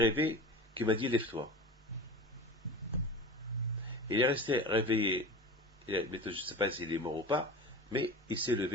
qui m'a dit, lève-toi. Il est resté réveillé. Je ne sais pas s'il est mort ou pas, mais il s'est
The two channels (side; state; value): both; normal; correlation 0.31